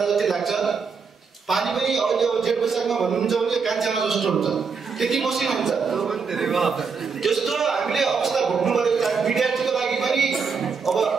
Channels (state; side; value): quieter; left; 5.4 dB